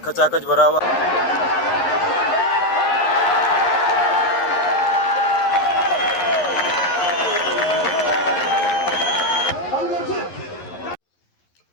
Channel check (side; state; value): right; late; 11 ms